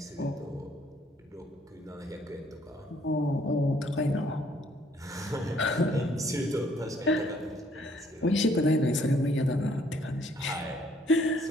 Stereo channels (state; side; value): normal; both; correlation 0.64